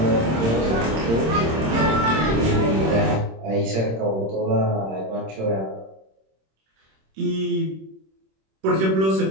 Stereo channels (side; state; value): left; late; 26 ms